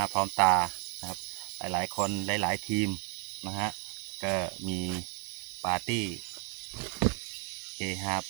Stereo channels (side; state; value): left; quieter; 36.8 dB